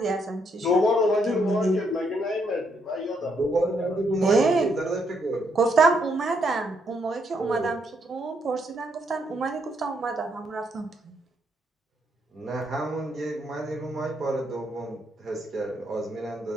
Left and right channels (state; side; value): normal; both; correlation 0.75